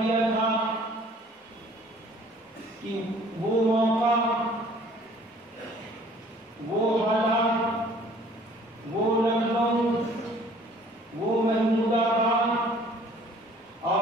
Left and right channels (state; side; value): normal; both; correlation 0.54